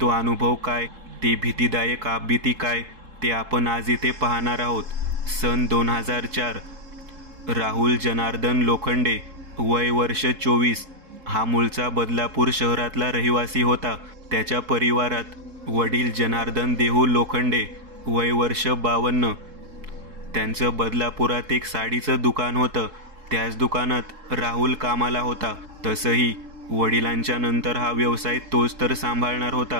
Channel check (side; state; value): left; late; 3.7 ms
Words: अनुभव काय, ते भीतीदायक आपबीती काय, ते आपण आज इथे पाहणार आहोत। सन 2004। राहुल जनार्दन लोखंडे, वय वर्ष 24, हा मूळचा बदलापूर शहरातला रहिवासी होता। त्याच्या परिवारात वडील जनार्दन देहू लोखंडे, वय वर्ष 52, त्यांचं बदलापुरात एक साडीचं दुकान होतं। त्याच दुकानात राहुल कामाला होता। तसंही वडिलांच्या नंतर हा व्यवसाय तोच तर सांभाळणार